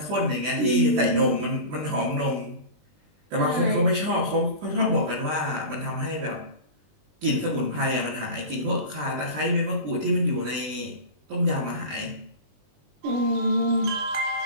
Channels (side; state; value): left; late; 20 ms